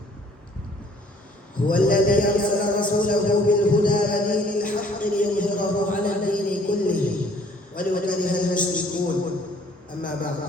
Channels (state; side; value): normal; both; correlation 0.59